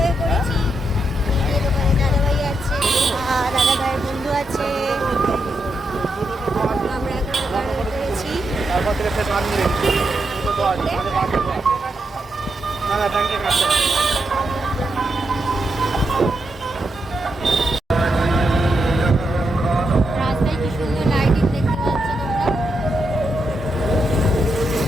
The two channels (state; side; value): normal; both; correlation 0.83